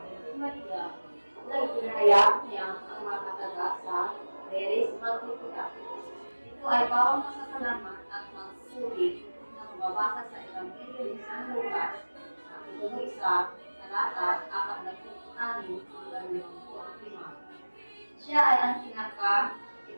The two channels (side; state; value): both; inverted; correlation -1.00